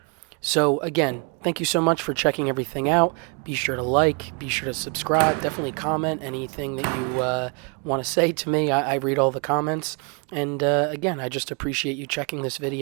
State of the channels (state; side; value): quieter; left; 35.8 dB